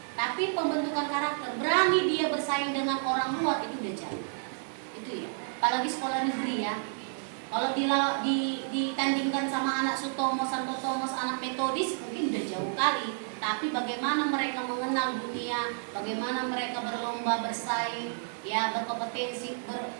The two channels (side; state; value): left; silent; digital silence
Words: Tapi pembentukan karakter, berani dia bersaing dengan orang luar, itu udah jauh. Itu ya. Apalagi sekolah negeri ya. Kalau ditandingkan sama anak Sutomo, Santo Thomas, anak Metodis mungkin udah jauh kali. Tapi bagaimana mereka mengenal dunia, bagaimana mereka berlomba, bersaing, ya berkompetensi,